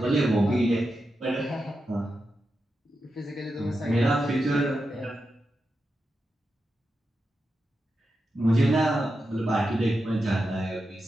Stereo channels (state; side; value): normal; both; correlation 0.89